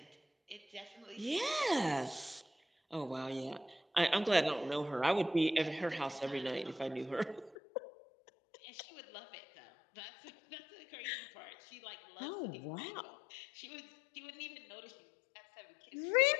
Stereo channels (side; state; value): right; drops out; at 7.6 s